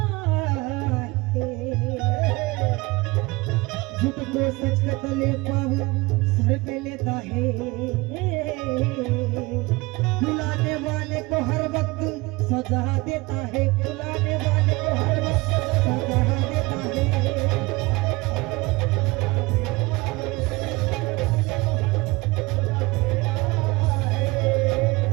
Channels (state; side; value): quieter; left; 23.0 dB